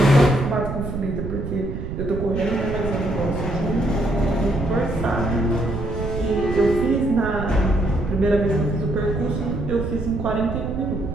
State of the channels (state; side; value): noise; right; rumble, 5 dB below the sound